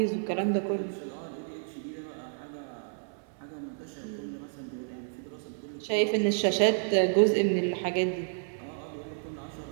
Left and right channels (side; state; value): left; silent; 57 dB below the other